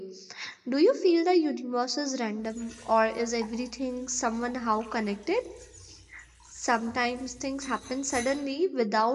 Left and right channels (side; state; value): both; identical; correlation 1.00